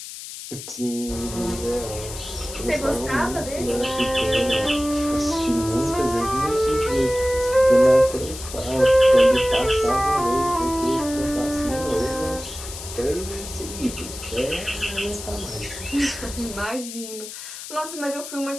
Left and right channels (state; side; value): noise; left; hiss, 11 dB below the sound